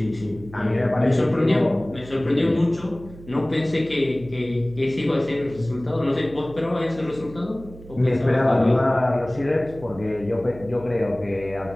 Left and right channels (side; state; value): right; noise; hum, 18 dB below the sound